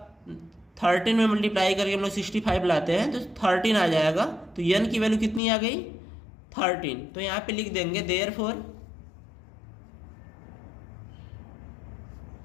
13 में मल्टीप्लाई करके हम लोग 65 लाते हैं तो 13 आ जाएगा। तो n की वैल्यू कितनी आ गई 13। तो यहाँ पे लिख देंगे therefore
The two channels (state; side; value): drops out; right; at 5.4 s